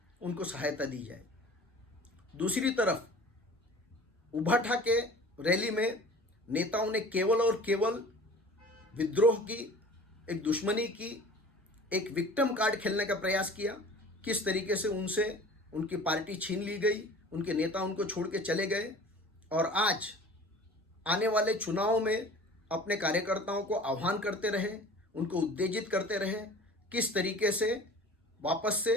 उनको सहायता दी जाए। दूसरी तरफ उभा ठाके रैली में नेताओं ने केवल और केवल विद्रोह की, एक दुश्मनी की, एक विक्टिम कार्ड खेलने का प्रयास किया। किस तरीके से उनसे उनकी पार्टी छीन ली गई, उनके नेता उनको छोड़ के चले गए और आज आने वाले चुनाव में अपने कार्यकर्ताओं को आह्वान करते रहे, उनको उत्तेजित करते रहे, किस तरीके से वापस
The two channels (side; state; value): both; normal; correlation 0.43